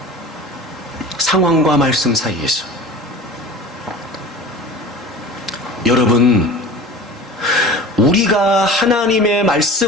상황과 말씀 사이에서. 여러분, 우리가 하나님의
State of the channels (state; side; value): normal; both; correlation 0.37